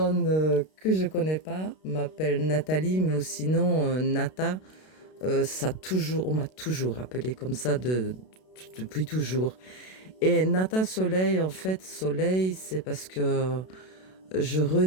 que je connais pas m'appellent Nathalie, mais sinon, Nata, on m'a toujours appelé comme ça depuis toujours. Et Nata Soleil, en fait, Soleil, c'est parce que je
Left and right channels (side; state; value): right; late; 32 ms